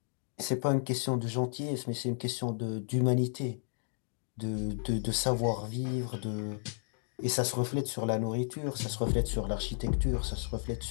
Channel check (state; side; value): silent; right; digital silence